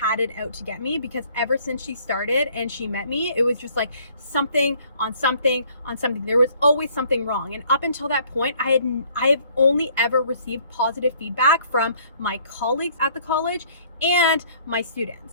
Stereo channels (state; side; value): inverted; both; correlation -0.60